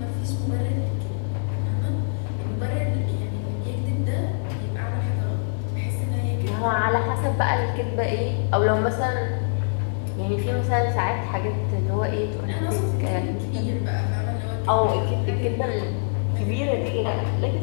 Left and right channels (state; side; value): silent; right; digital silence